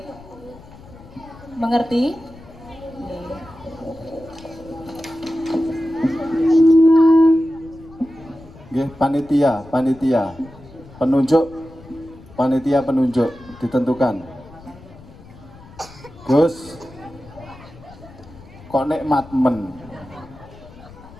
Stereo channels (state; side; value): noise; left; rumble, 20 dB below the sound